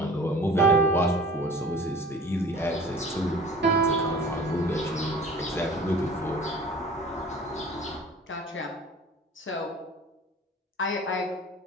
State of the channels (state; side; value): normal; both; correlation 0.44